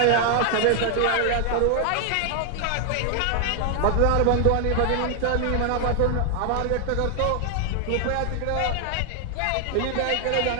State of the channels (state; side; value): different; both; correlation 0.00